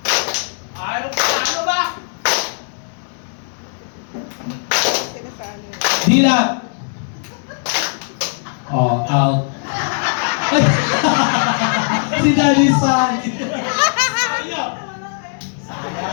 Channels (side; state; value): right; silent; 67 dB below the other